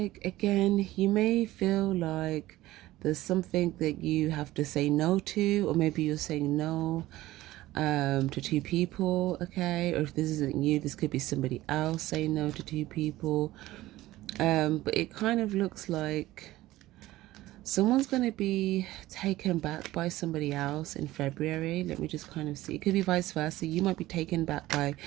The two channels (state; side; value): quieter; left; 16.7 dB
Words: again, you may feel like there's something that you have to say no to, or maybe you're saying no to two people, okay? Or if this isn't you, this could be somebody else saying no to two people. But it kind of looks like someone's going to be taken back by somebody else in February. Let me just kind of see. It could be vice versa. You might be taken back by